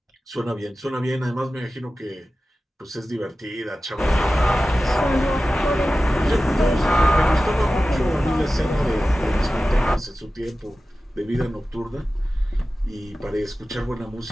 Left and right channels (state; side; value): normal; both; correlation 0.95